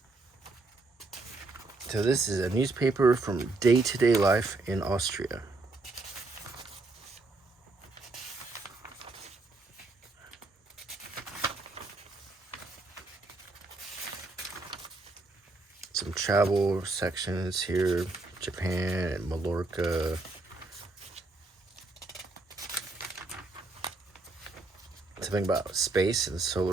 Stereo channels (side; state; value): left; quieter; 3.3 dB